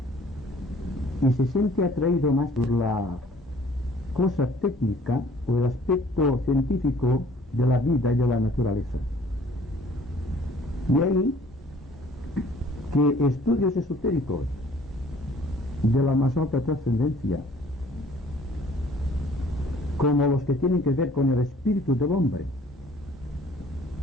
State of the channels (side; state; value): both; normal; correlation 0.55